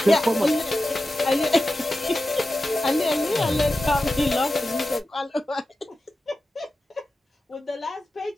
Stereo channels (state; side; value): normal; both; correlation 0.93